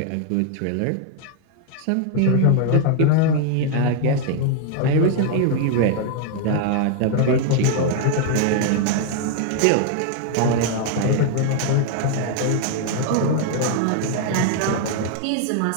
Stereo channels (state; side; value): different; both; correlation 0.00